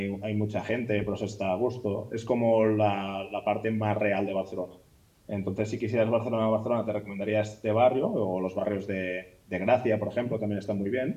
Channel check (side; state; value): both; identical; correlation 1.00